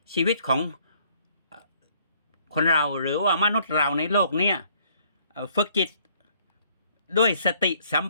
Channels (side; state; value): both; inverted; correlation -0.63